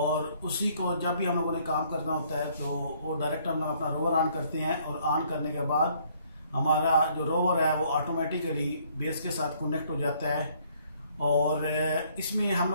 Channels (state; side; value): inverted; both; correlation -0.64